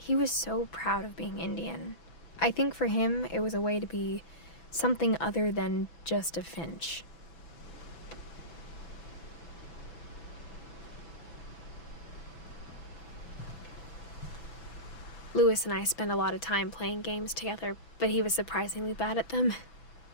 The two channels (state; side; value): late; right; 6.0 ms